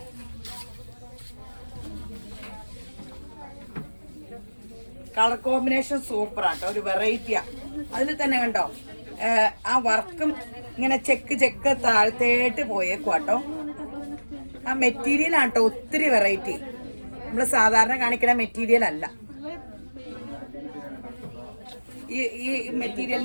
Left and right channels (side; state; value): both; inverted; correlation -1.00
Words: കളർ കോമ്പിനേഷൻ സൂപ്പർ ആട്ടോ. ഒരു വെറൈറ്റിയാ. അതിൽ തന്നെ കണ്ടോ ആ വർക്കും ഇങ്ങനെ ചെക്ക് താഴ്ത്തേട്ട് പോയേക്കുവാട്ടോ. ആ മെറ്റീരിയൽ ആട്ടോ ഒത്തിരി വെറൈറ്റി. നമ്മൾ സാധാരണ കാണിക്കുന്ന മെറ്റീരിയൽ അല്ല. ഈ